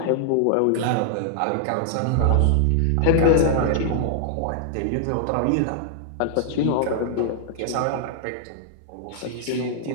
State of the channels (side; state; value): both; different; correlation -0.01